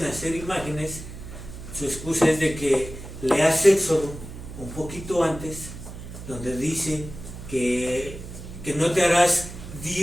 hacer imágenes, su excusa es de que leas Éxodo un poquito antes, donde dice que no te harás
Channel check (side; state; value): right; noise; hum, 12 dB below the sound